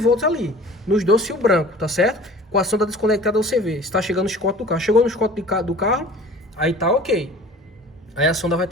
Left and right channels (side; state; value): both; normal; correlation 0.44